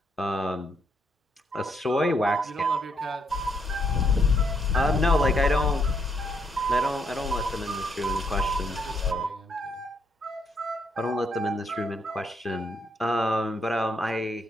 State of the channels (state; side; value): normal; both; correlation 0.74